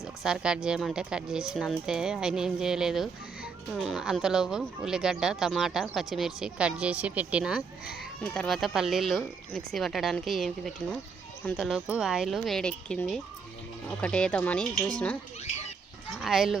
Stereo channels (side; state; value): left; quieter; 5.3 dB